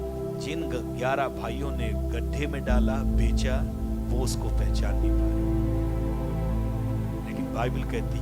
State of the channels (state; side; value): identical; both; correlation 1.00